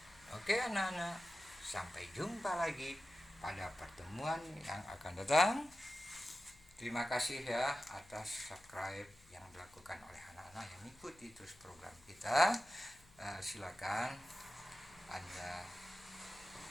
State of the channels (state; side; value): noise; left; hum, 25 dB below the sound